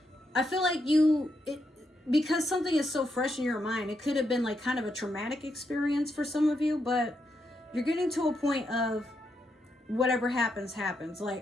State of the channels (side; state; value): both; normal; correlation 0.81